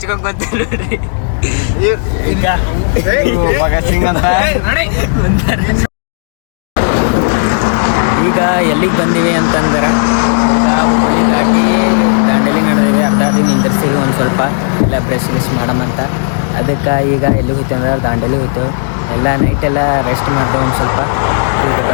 ಬಂತ ನೋಡ್ರಿ. ಈಗ ಎಲ್ಲಿಗೆ ಬಂದೀವಿ ಅಂತಂದ್ರೆ ಈಗ ಹುಬ್ಬಳ್ಳಿ ದಾಟಿ ದಾಂಡೇಲಿ ನಡೆದೇವಿ. ಅರ್ಧ ದಿನ ನಿಂದಿರ್ಸಿವಿ ಒಂದು ಸ್ವಲ್ಪ ಎಲ್ಲ ಬ್ರಷ್ ಗಿಶ್ ಮಾಡಮಂತ. ಅದಕ್ಕೆ ಈಗ ಎಲ್ಲಿಗೆ ಹೋಗ್ತೀವಿ ಅಂದ್ರೆ ದಾಂಡೇಲಿ ಹೋಗ್ತೇವೆ. ಎಲ್ಲ ನೈಟ್ ಎಲ್ಲ ರೆಸ್ಟ್ ಮಾಡ್ತೇವೆ ಒಂದು ಸ್ವಲ್ಪ. ಈಗ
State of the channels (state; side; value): silent; right; digital silence